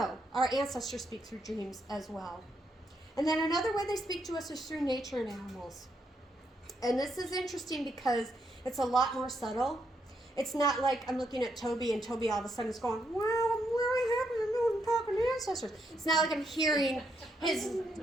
our ancestors speak through dreams as well. And then another way they speak to us is through nature and animals. And this is interesting because it's a lot more subtle. It's not like I'm looking at Toby and Toby all of a sudden is going, wow, I'm really happy to know I'm talking to ancestors. It's not like I'm hearing his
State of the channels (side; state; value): both; normal; correlation 0.78